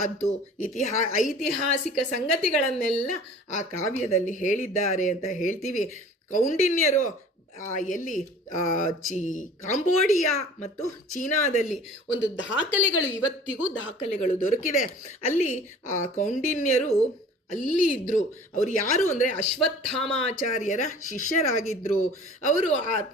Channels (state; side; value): normal; both; correlation 0.46